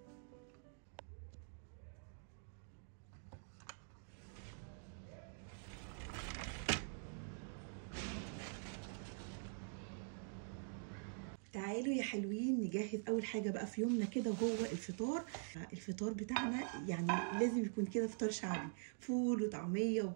تعالوا يا حلوين نجهز اول حاجه بقى في يومنا كده، وهو الفطار بتاعنا. يعني لازم يكون كده فطار شعبي، فول وطعميه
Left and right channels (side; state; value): left; silent; digital silence